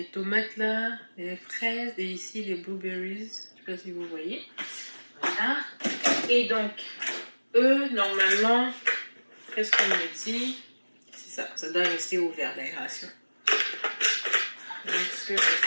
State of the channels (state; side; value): inverted; both; correlation -1.00